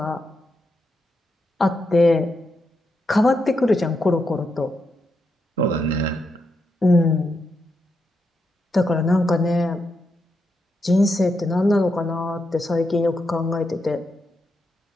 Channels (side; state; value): both; normal; correlation 0.83